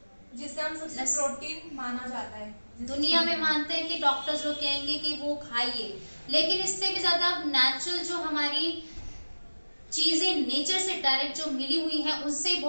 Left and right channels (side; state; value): both; inverted; correlation -1.00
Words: जिसे हम सबसे प्रोटीन माना जाता है, दुनिया में मानते हैं कि डॉक्टर्स लोग कहेंगे कि वो खाइए, लेकिन इससे भी ज्यादा नेचुरल जो हमारी चीजें नेचर से डायरेक्ट जो मिली हुई हैं, उससे